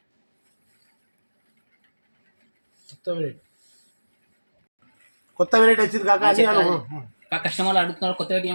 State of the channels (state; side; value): inverted; both; correlation -1.00